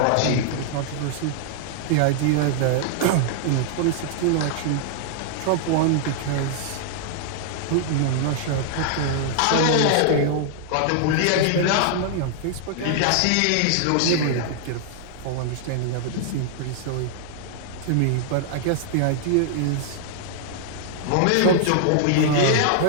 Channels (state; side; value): different; both; correlation -0.01